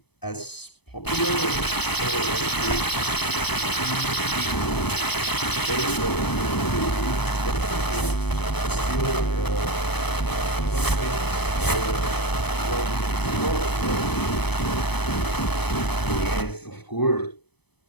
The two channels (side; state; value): right; late; 0.98 ms